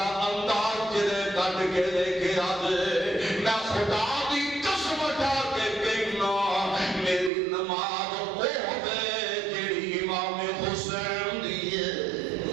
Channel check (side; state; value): left; drops out; at 7.3 s